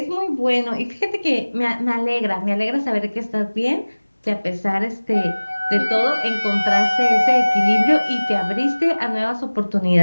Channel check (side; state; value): both; inverted; correlation -1.00